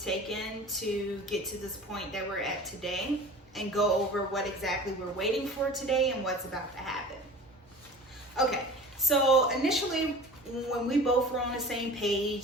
to get to this point that we're at today and go over what exactly we're waiting for today and what's about to happen. Okay, so initially when we both were on the same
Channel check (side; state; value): both; normal; correlation 0.40